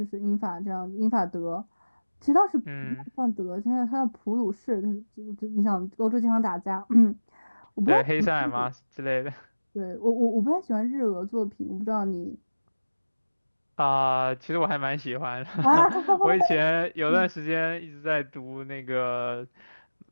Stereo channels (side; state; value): both; inverted; correlation -1.00